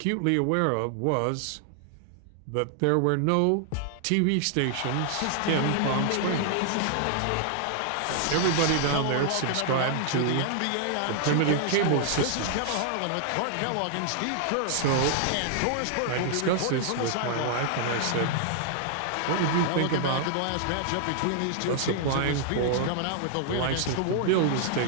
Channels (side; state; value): both; different; correlation -0.01